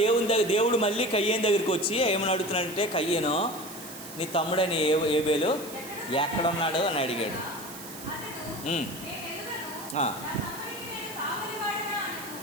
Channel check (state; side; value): noise; right; hiss, 13 dB below the sound